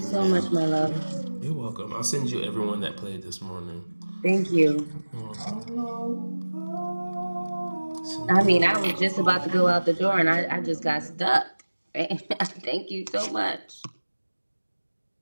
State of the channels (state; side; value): inverted; both; correlation -1.00